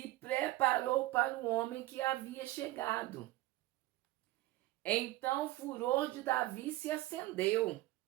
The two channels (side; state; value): left; quieter; 17.8 dB